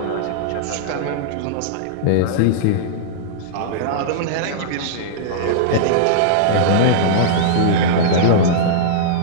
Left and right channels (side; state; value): both; different; correlation -0.03